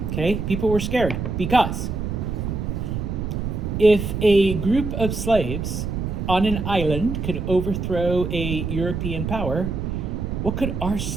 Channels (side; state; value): right; noise; rumble, 3 dB below the sound